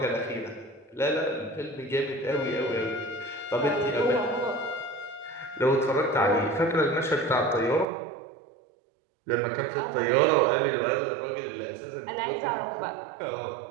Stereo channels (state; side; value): drops out; left; at 7.9 s